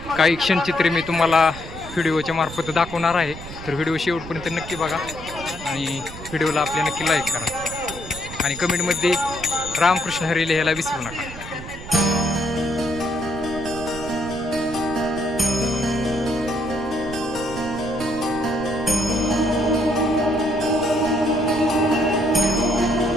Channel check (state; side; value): noise; right; rumble, 13 dB below the sound